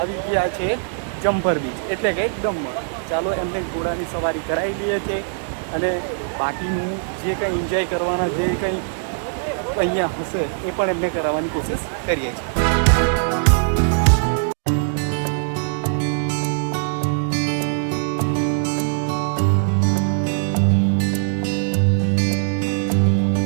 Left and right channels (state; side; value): silent; left; digital silence